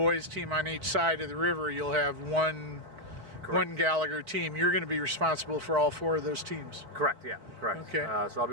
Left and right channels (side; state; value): left; late; 4.2 ms